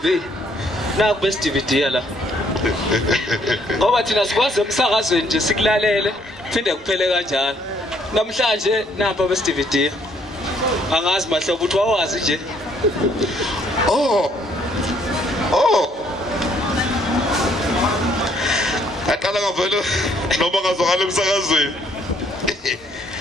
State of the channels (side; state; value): both; normal; correlation 0.66